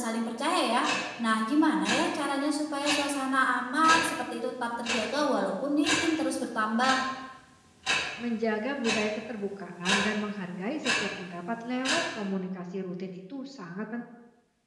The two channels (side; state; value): both; identical; correlation 1.00